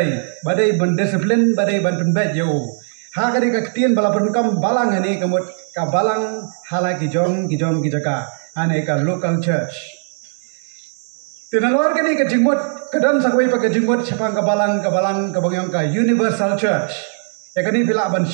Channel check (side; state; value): left; silent; digital silence